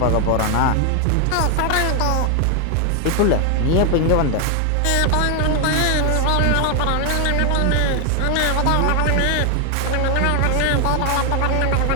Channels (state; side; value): different; both; correlation 0.00